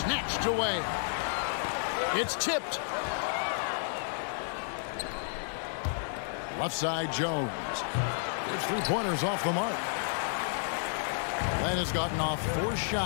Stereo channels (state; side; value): silent; right; digital silence